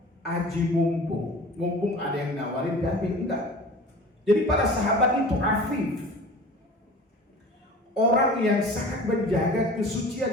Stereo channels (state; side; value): normal; both; correlation 0.40